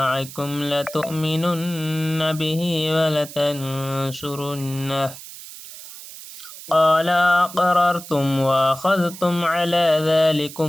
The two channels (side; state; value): right; noise; hiss, 14 dB below the sound